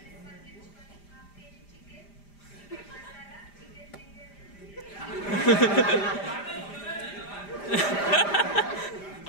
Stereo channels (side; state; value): right; late; 5.0 ms